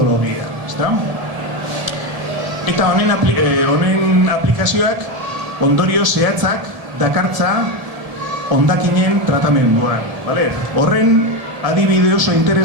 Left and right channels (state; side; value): late; left; 1.7 ms